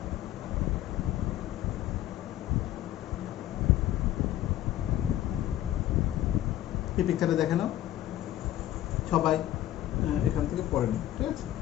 এই পিকচারটা দেখে নাও সবাই, এখান থেকে পড়ে নিন, ঠিক আছে?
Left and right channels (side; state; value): right; quieter; 13.3 dB